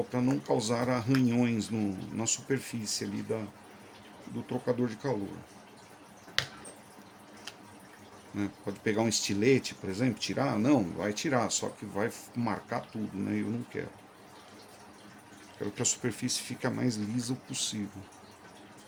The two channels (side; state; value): both; identical; correlation 1.00